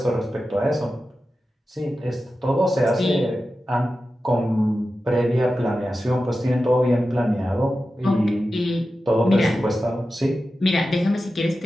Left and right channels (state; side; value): normal; both; correlation 0.92